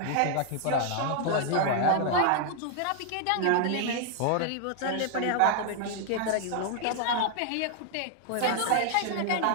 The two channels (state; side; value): different; both; correlation 0.00